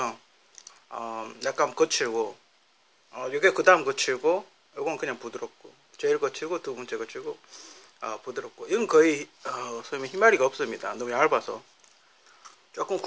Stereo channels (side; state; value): both; identical; correlation 1.00